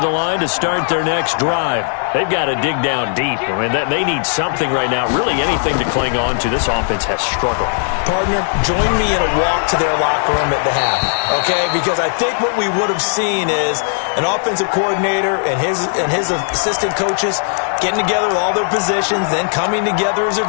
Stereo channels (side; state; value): right; silent; digital silence